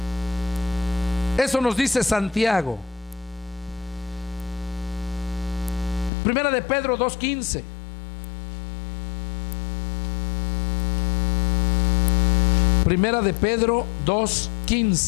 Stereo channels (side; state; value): right; drops out; at 6.1 s